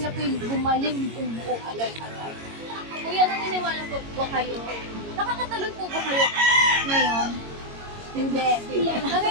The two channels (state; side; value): late; left; 22 ms